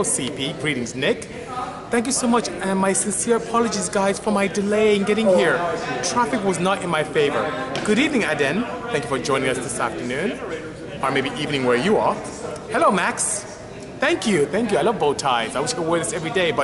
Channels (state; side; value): identical; both; correlation 1.00